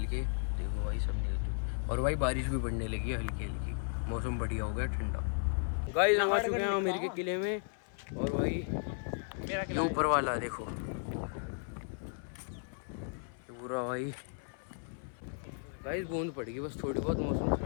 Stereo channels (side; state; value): right; silent; 54 dB below the other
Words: के। देखो भाई सब निकल चुके, और भाई बारिश भी पड़ने लगी है हल्की हल्की, मौसम बढ़िया हो गया ठंडा। गाइस हम आ चुके हैं आमेर के किले में, और भाई ये ऊपर वाला देखो, ये पूरा भाई। गाइस बूंद पड़ गई बस थोड़ी बहुत, मौसम